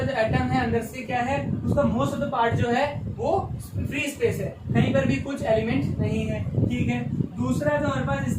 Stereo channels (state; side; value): identical; both; correlation 1.00